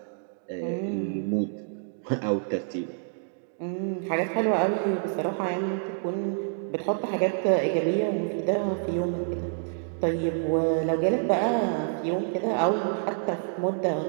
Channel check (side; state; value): left; silent; digital silence